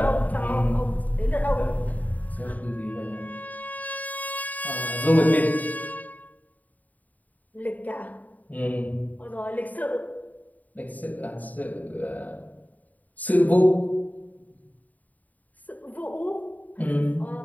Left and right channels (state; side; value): late; right; 0.076 ms